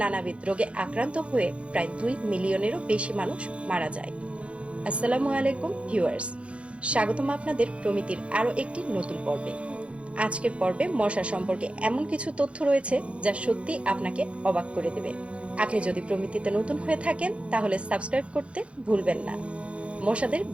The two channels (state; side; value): late; left; 0.061 ms